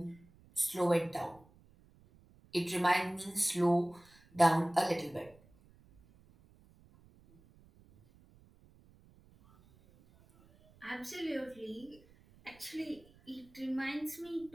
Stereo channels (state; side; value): noise; right; rumble, 27 dB below the sound